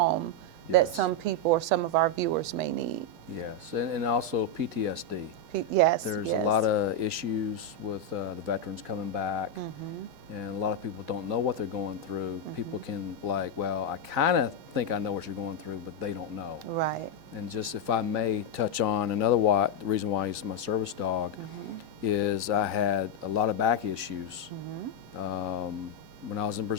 that some people or some of our viewers may need. Yes, and also PTSD. There's a lot of issues with the veterans coming back, and a lot of people don't know what they're going through. People can well, I kind of think I know what you're going through, but they don't know. Right. And just if I may touch on the reason why he's my service dog, is I had a lot of back issues. When I was in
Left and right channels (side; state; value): left; late; 6.2 ms